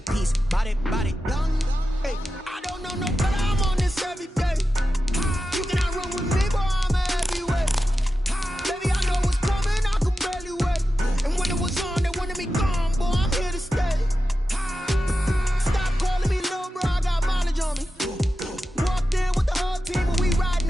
body, body, done. Hey, I don't know no better. I'm on this every day. You cannot run with me, boy, I'm a heavyweight. Baby, I know what's coming, I could barely wait. And when it was on, they wanted me gone, boy, I'm here to stay. Stop calling me little bro, I got mileage on me. Walked in with the whole team and we riding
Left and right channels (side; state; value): both; normal; correlation 0.92